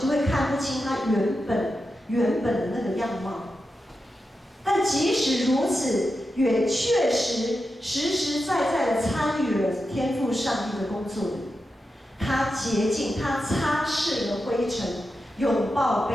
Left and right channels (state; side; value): normal; both; correlation 0.89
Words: 会看不清它原本的那个样貌。但即使如此，也确实实实在在的参与了天父上帝的工作里。他洁净，他擦拭了灰尘，拥抱